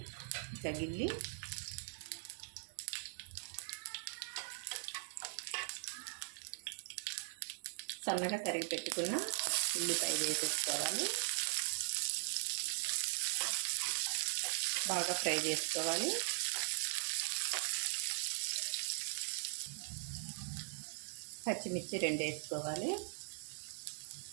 ఇట్లా గిల్లి. సన్నగా తరిగి పెట్టుకున్న ఉల్లిపాయ వేసేసుకోవాలి, బాగా ఫ్రై చేసుకోవాలి. పచ్చిమిర్చి 2 వేసుకోవాలి.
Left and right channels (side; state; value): left; silent; digital silence